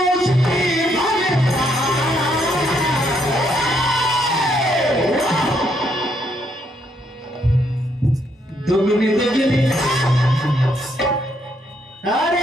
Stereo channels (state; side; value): normal; both; correlation 0.73